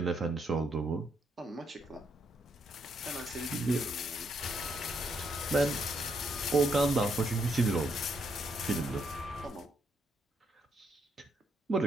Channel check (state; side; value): normal; both; correlation 0.76